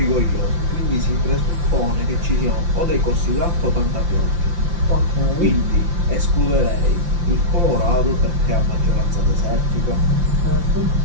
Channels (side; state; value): left; late; 5.8 ms